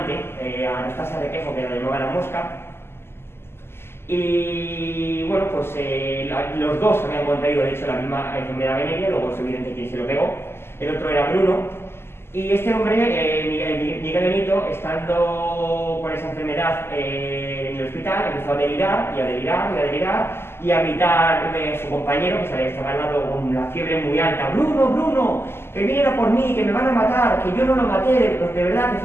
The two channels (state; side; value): late; right; 0.12 ms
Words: Anastasia Requejo, que la llamaba la mosca, y bueno, pues los dos habían contraído de hecho la misma enfermedad venérea, luego es evidente quién se lo pegó, el otro era Bruno, Y este hombre, Miguel Benito, estando con esa enfermedad en el hospital, empezó a delirar y a delirar y a delirar y a gritar a su compañero, que estaba al lado con la fiebre muy alta: Bruno, Bruno, que viniera por mí, que me van a matar, que yo no lo maté, de verdad que